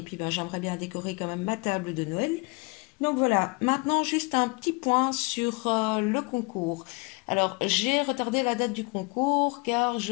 puis, j'aimerais bien décorer quand même ma table de Noël. Donc voilà, maintenant juste un petit point sur le concours. Alors j'ai retardé la date du concours car je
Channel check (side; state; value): right; quieter; 28.9 dB